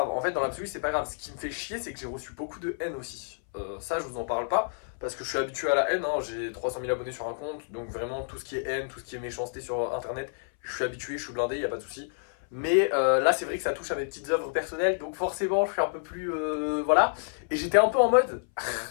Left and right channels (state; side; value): silent; right; 59 dB below the other